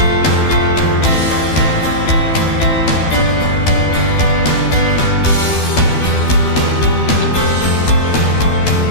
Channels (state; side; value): late; right; 12 ms